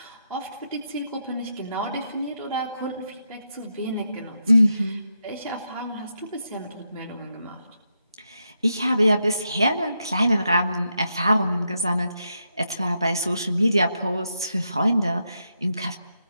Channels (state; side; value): inverted; both; correlation -0.83